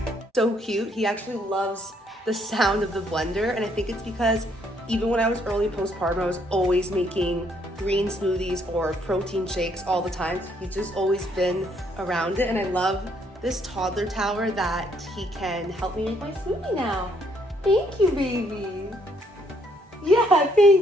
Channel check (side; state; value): both; normal; correlation 0.69